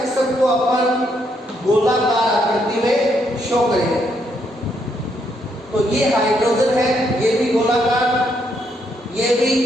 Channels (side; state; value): both; normal; correlation 0.75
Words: को अपन गोलाकार आकृति में शो करेंगे। तो ये हाइड्रोजन है, ये भी गोलाकार, ये भी